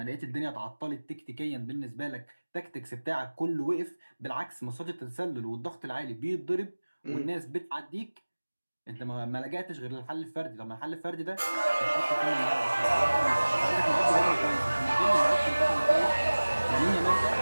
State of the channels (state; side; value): inverted; both; correlation -1.00